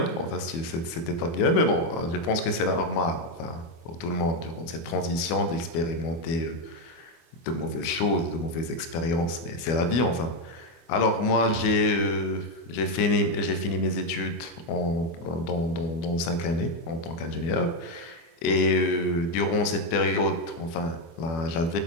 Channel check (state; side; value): late; right; 24 ms